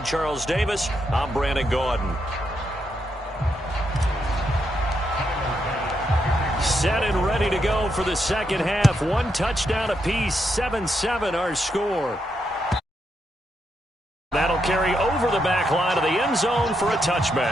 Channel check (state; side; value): normal; both; correlation 0.81